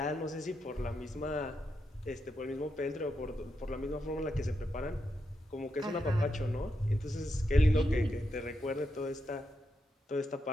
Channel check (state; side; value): normal; both; correlation 0.84